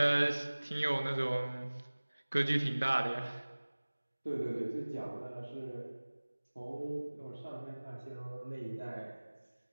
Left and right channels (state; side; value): inverted; both; correlation -1.00